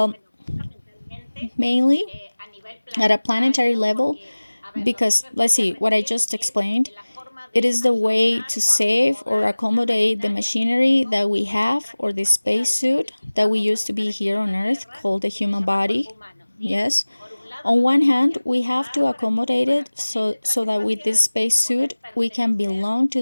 mainly at a planetary level, because let's see, what I just explained, it is the way to save or accommodate the machinery that we have or the spacesuit that we used to be here on Earth called the human body. Yes. On one hand, we have to accommodate it so that with this spacesuit we can belong to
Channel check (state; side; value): inverted; both; correlation -1.00